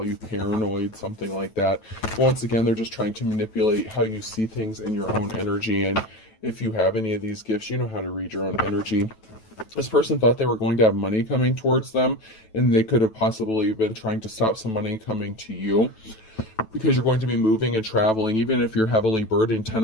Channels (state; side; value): late; right; 9.1 ms